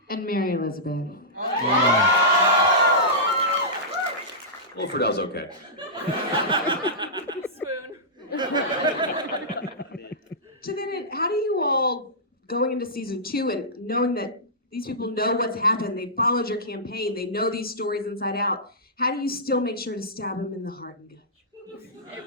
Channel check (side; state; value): both; normal; correlation -0.15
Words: And Mary Elizabeth. Well, Fridel's okay. So then, how do you all, going into season 2 and knowing that these people know what's happened, they followed your campaign, they know these stories inside out, how do you still make sure to stab them in the heart and gut?